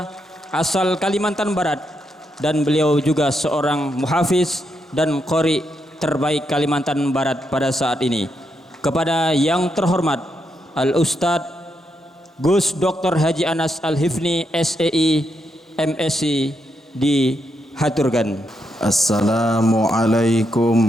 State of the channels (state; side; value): normal; both; correlation 0.81